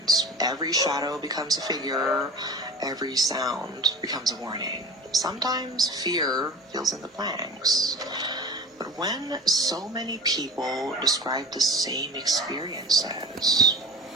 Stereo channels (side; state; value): both; normal; correlation 0.37